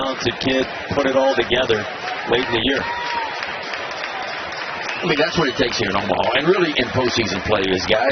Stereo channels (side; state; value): both; identical; correlation 1.00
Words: kid, put it all together late in the year. I mean, that's what it takes here in Omaha. And really in postseason play is